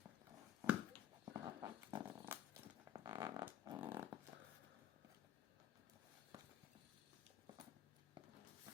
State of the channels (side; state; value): right; quieter; 10.6 dB